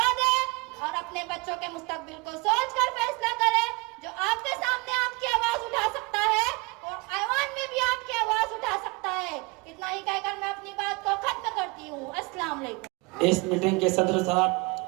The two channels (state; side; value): quieter; left; 26.1 dB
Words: दे और अपने बच्चों के मुस्तकबिल को सोचकर फैसला करे। जो आपके सामने आपकी आवाज उठा सकता है और ऐवान में भी आपकी आवाज उठा सकता है। इतना ही कहकर मैं अपनी बात को खत्म करती हूँ। अस्सलाम वालेकुम। इस मीटिंग के सदर साहब